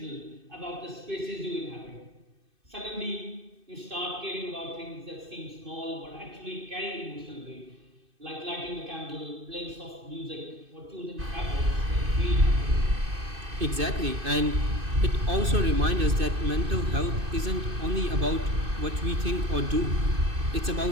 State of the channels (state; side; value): late; left; 2.6 ms